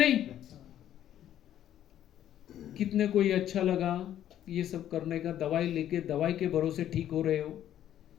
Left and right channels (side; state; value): right; quieter; 11.3 dB